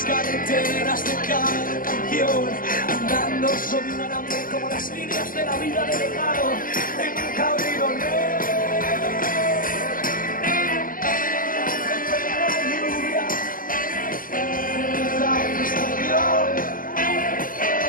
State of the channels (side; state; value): right; late; 0.41 ms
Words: carreteras de cada canción, andando sobre un alambre como las líneas de la vida de legado en un cabrito negro.